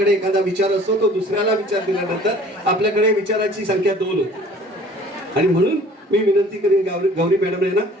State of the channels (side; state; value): both; normal; correlation 0.51